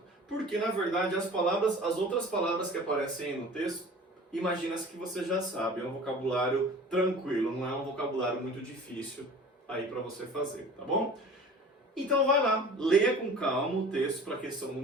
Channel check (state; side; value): normal; both; correlation 0.42